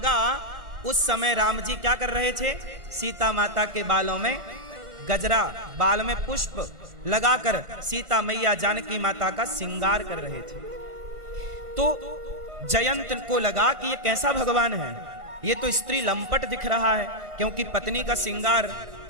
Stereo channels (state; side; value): late; left; 1.5 ms